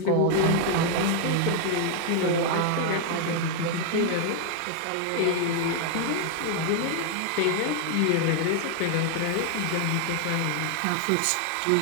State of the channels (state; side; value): different; both; correlation 0.00